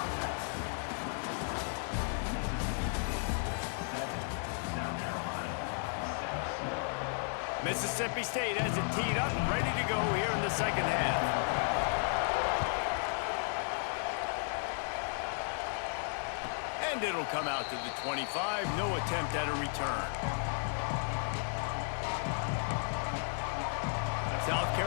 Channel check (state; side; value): silent; right; 55 dB below the other